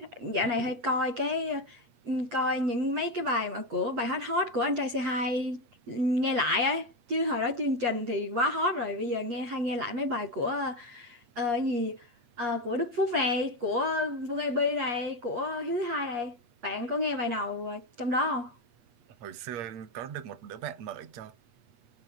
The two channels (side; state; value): left; late; 8.4 ms